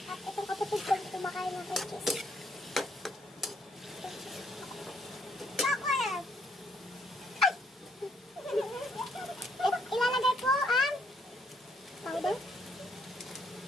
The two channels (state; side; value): normal; both; correlation 0.70